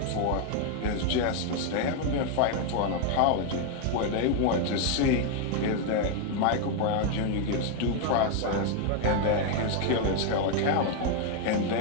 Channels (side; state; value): both; different; correlation 0.00